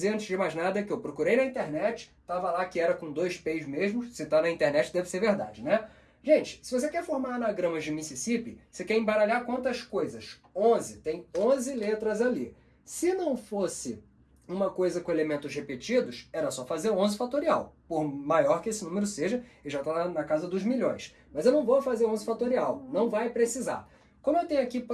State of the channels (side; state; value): both; identical; correlation 1.00